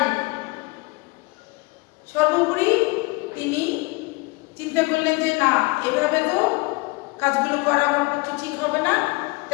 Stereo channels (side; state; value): right; quieter; 25.5 dB